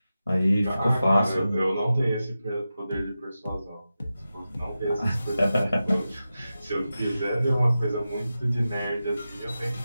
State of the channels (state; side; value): inverted; both; correlation -0.92